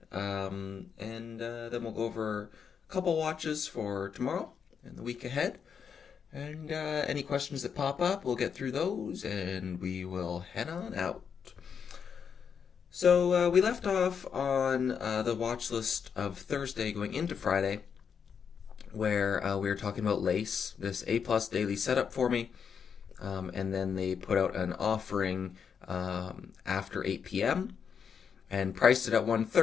and then we'll go over a couple watches for tomorrow and the week ahead. And any questions that pop up, we'll get through those and we will head on out. So we left off on the watch list of Thursday going into Friday, where we were talking about Lace, this A plus daily setup for me, and then they put out an offering after 8 p.m. and priced it at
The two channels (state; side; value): quieter; right; 6.9 dB